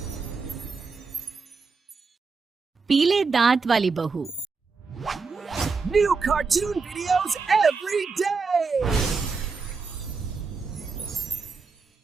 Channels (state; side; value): quieter; left; 4.7 dB